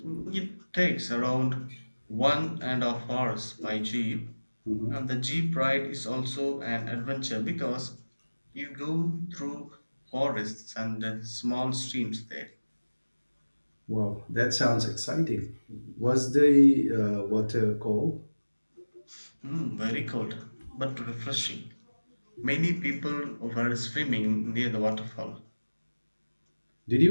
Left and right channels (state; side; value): inverted; both; correlation -1.00